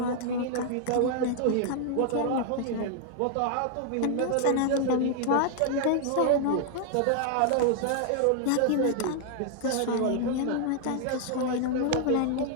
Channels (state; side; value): different; both; correlation 0.00